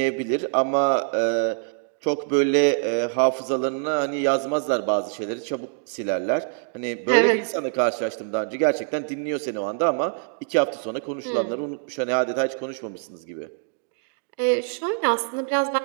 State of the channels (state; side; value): silent; left; digital silence